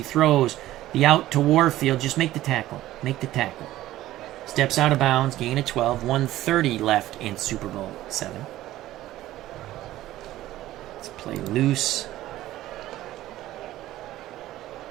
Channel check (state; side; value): quieter; left; 15.0 dB